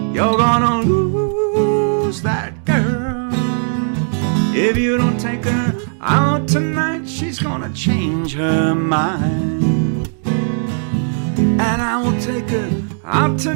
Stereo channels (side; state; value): left; silent; digital silence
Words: You're gonna lose that girl. If you don't take her out tonight, she's gonna change her mind. And I will take her out